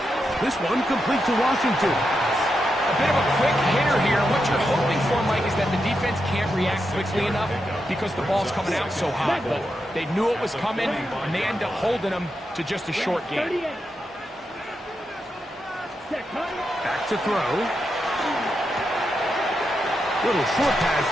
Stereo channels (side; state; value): both; normal; correlation 0.85